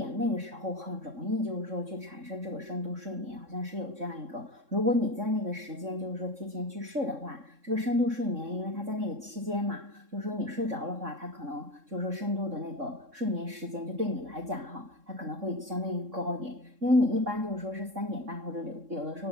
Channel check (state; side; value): late; left; 3.7 ms